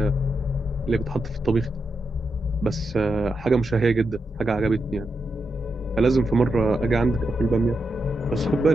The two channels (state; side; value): normal; both; correlation 0.86